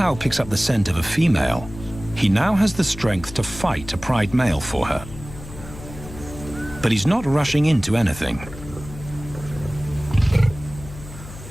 picks up the scent of a female, he now has the strength to fight a pride male for her. But he's not rushing into anything.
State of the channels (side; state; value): left; noise; hum, 14 dB below the sound